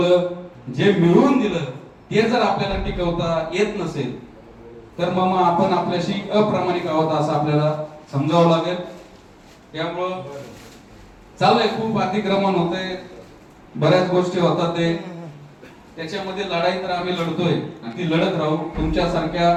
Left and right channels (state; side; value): identical; both; correlation 1.00